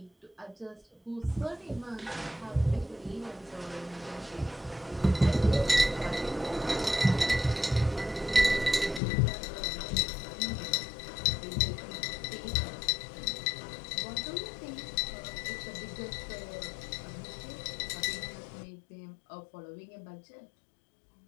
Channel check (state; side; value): drops out; right; at 9.0 s